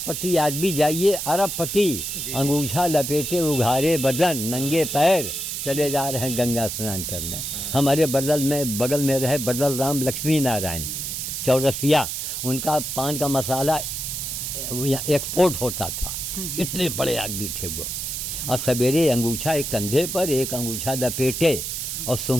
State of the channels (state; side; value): noise; right; hiss, 4 dB below the sound